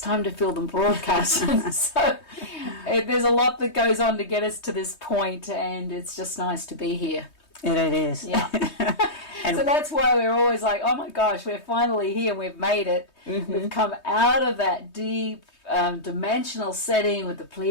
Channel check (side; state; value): right; late; 3.2 ms